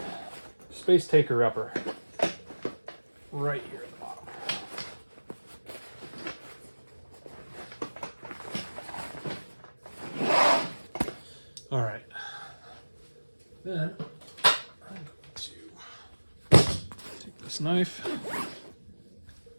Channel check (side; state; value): both; inverted; correlation -1.00